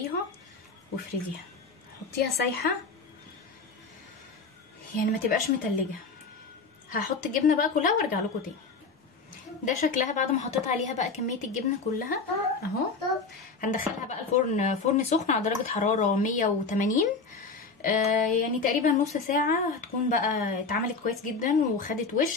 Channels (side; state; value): right; quieter; 4.3 dB